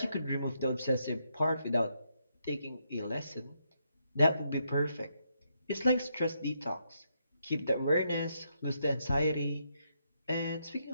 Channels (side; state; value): both; inverted; correlation -0.79